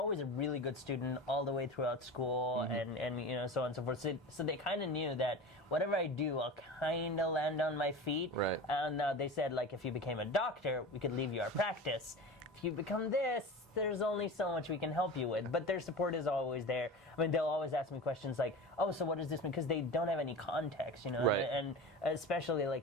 a really good student all the way throughout school, and so on and so forth. So they kind of knew that whatever I do, I'll kind of land on my feet. Right. And they said, like, if you became a doctor, we could leave you our practice. If you become this, there's only so much we can help you with. But their support is always there. I mean, they'll always ask me questions like, oh, so what does this mean? Because they don't have any context, Right. And especially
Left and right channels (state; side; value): normal; both; correlation 0.31